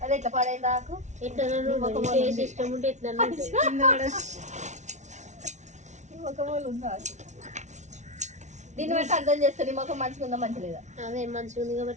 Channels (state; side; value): late; left; 0.34 ms